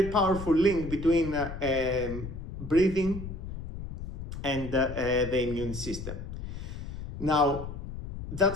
powerful link between breathing and the immune system. Now,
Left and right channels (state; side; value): noise; left; rumble, 8 dB below the sound